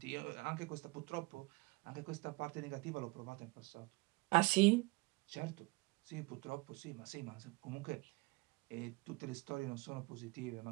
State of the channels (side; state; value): left; quieter; 24.4 dB